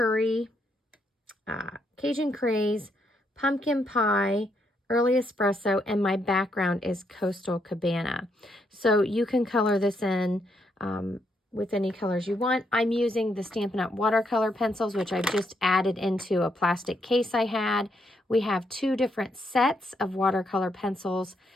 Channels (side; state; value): both; normal; correlation 0.77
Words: Cajun craze, pumpkin pie, early espresso, and my background is Coastal Cabana. So you can color this in with any colors you want. I'm using the Stampin' Up! Watercolor pencils, which I've just added into a plastic case I had. We have 2 different sets of watercolor pencils,